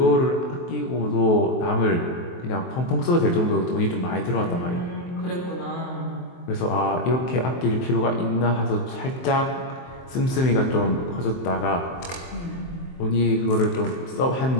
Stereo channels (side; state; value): right; late; 23 ms